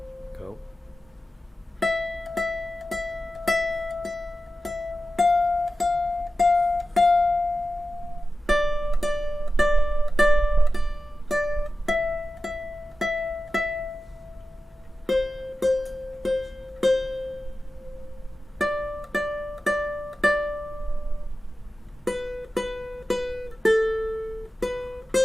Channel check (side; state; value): both; normal; correlation 0.94